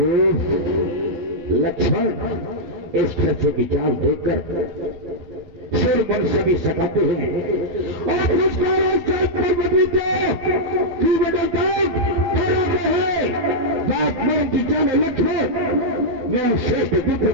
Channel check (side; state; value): left; late; 12 ms